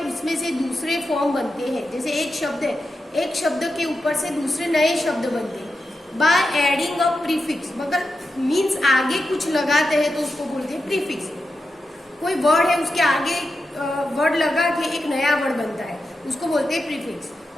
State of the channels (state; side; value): normal; both; correlation 0.89